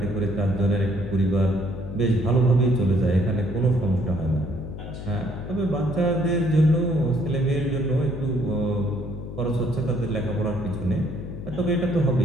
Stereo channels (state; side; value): noise; left; hum, 9 dB below the sound